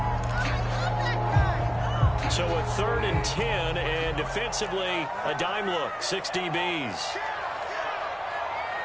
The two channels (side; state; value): both; identical; correlation 1.00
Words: So a 3rd and 10, and defensively, a dime look, 6 DBs.